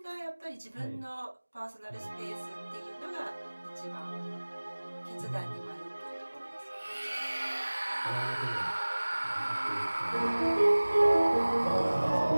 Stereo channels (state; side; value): inverted; both; correlation -1.00